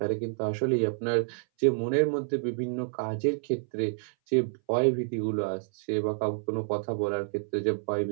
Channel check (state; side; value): silent; left; 59 dB below the other